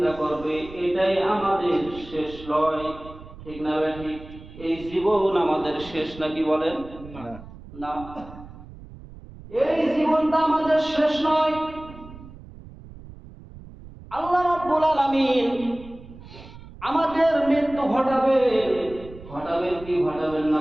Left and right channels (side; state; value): right; noise; rumble, 17 dB below the sound